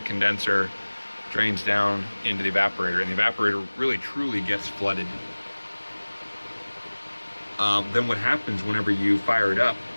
condenser, drains down into the evaporator, and the evaporator really truly gets flooded. Then what happens whenever you fire it up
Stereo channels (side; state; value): both; inverted; correlation -1.00